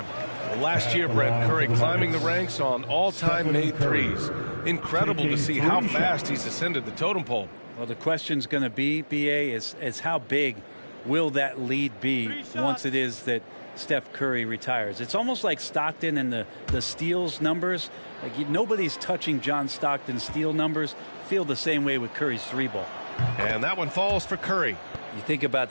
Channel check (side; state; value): both; inverted; correlation -1.00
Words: Last year, Brent Curry climbing the ranks on all-time made threes. Incredible to see how fast he's ascended the totem pole. Well, the question's going to be, BA, is how big will that lead be once it is that Steph Curry retires? It's almost like Stockton and the steals numbers. Like nobody's touching John Stockton's steal numbers. Feel the same way with Curry's 3-ball. And that one falls for Curry. You think about